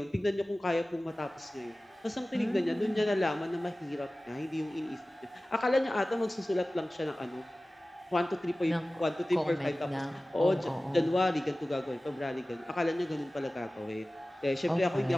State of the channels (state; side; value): normal; both; correlation 0.97